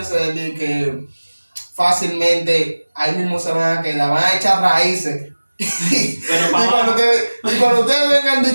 saber que fácilmente ahí mismo se van a quedar, van a echar raíces. Pero y, para cuando ustedes vengan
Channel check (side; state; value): both; inverted; correlation -1.00